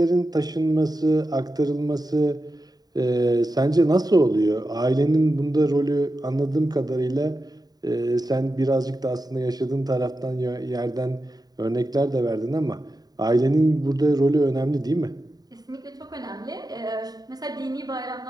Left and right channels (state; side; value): late; left; 0.19 ms